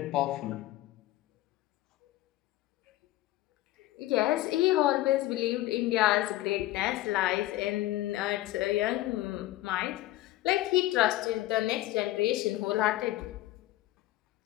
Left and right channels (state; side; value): quieter; right; 16.4 dB